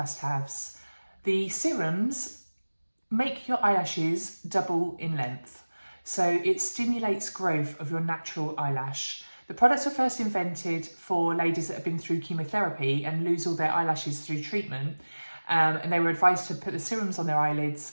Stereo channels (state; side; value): inverted; both; correlation -1.00